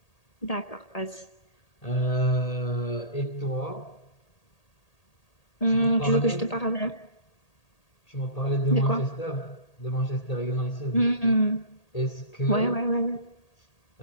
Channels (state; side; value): late; right; 1.8 ms